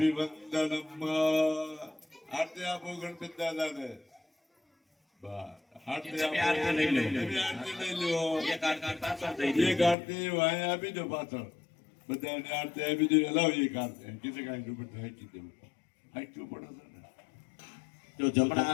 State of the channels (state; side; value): drops out; right; at 10.0 s